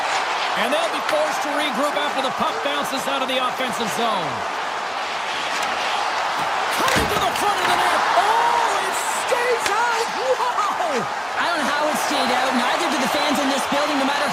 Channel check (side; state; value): both; identical; correlation 1.00